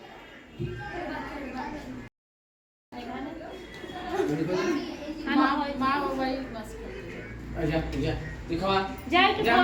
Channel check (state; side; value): identical; both; correlation 1.00